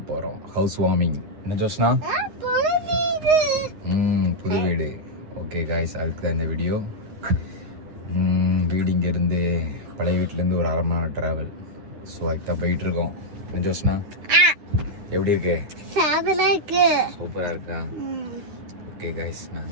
போகிறோம். House warming. என்ன ஜோஸ்னா? புது வீடு. ஓகே காய்ஸ், அதுக்கு தான் இந்த வீடியோ. வீடு இங்கேருந்து பழைய வீட்டிலேருந்து ஒரு 1/2 மணி நேரம் ட்ராவல். ஸோ அதுக்கு தான் போயிட்டுருக்கோம். என்ன ஜோஸ்னா, எப்படி இருக்கு? சூப்பராக இருக்கா? ஓகே காய்ஸ், நான்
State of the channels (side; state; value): left; late; 9.7 ms